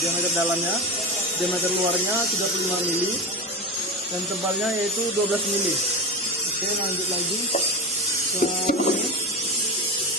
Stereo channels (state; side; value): normal; both; correlation 0.21